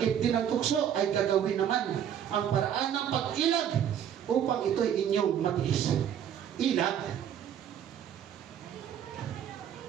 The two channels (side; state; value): left; quieter; 9.3 dB